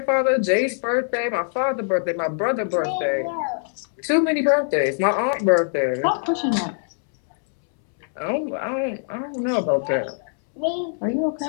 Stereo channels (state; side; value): silent; right; 64 dB below the other